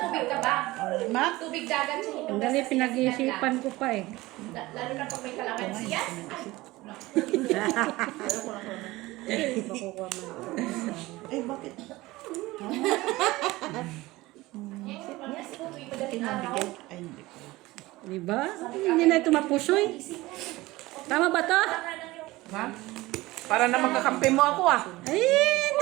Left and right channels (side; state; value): left; quieter; 19.4 dB